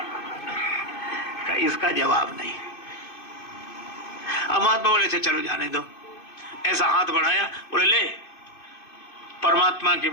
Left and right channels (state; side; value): late; right; 2.5 ms